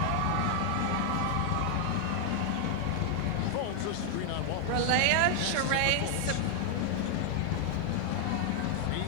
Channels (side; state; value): both; different; correlation 0.00